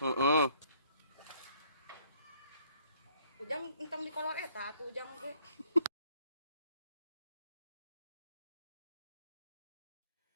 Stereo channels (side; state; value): both; inverted; correlation -0.64